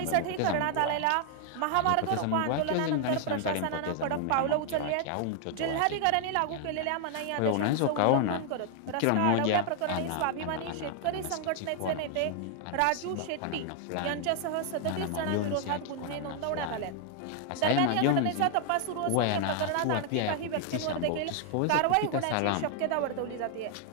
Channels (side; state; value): both; different; correlation 0.00